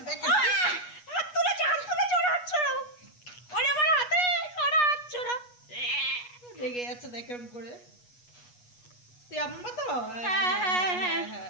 দেখ। হাত তুলেছে, হাত তুলেছে, ওরা হাত ছড়াও। ওরে আমার হাতে, ওরা হাত ছড়া। রেগে যাচ্ছে দেখ এরকম করে। তুই আমার মা তো? হ্যাঁ হ্যাঁ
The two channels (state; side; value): late; right; 8.3 ms